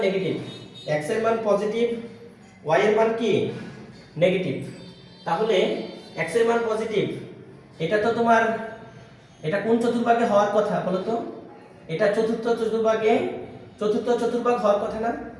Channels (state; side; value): identical; both; correlation 1.00